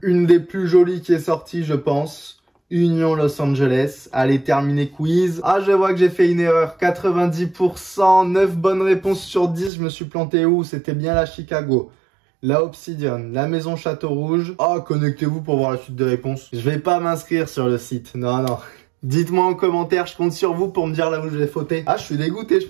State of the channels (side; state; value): left; drops out; at 9.7 s